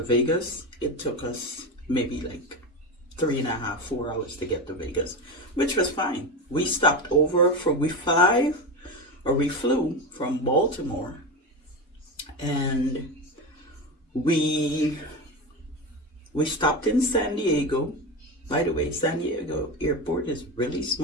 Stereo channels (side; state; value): both; normal; correlation 0.20